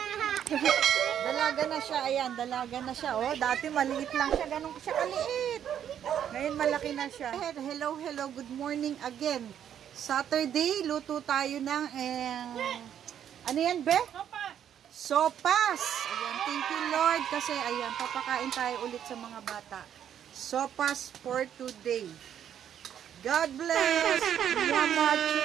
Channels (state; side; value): quieter; left; 9.6 dB